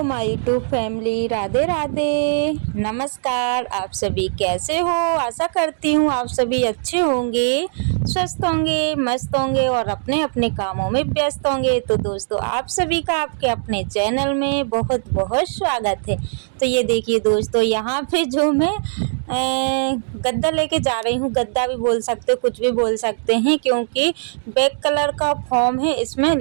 My YouTube family, Radhe Radhe. नमस्कार, आप सभी कैसे हो? आशा करती हूँ आप सभी अच्छे होंगे, स्वस्थ होंगे, मस्त होंगे और अपने अपने कामों में व्यस्त होंगे। तो दोस्तों, आप सभी का आपके अपने चैनल में बहुत बहुत स्वागत है। तो ये देखिए दोस्तों, यहाँ पे जो मैं गद्दा लेके जा रही हूँ, गद्दा भी बोल सकते हो, कुछ भी बोल सकते हैं, क्योंकि ब्लैक कलर का फॉर्म है इसमें,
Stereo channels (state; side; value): silent; left; digital silence